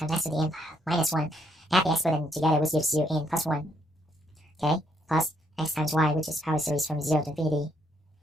x to the n minus 1. Add the exponent together, which gives you n plus 1. Okay, plus x times y, which is power series from 0 to infinity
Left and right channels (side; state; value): both; normal; correlation 0.73